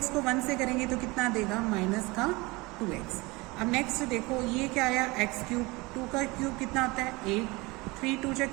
को 1 से करेंगे तो कितना देगा माइनस का 2x। अब नेक्स्ट देखो ये क्या आया x क्यूब, 2 का क्यूब कितना होता है 8, 3 2 जा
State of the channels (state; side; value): quieter; left; 23.9 dB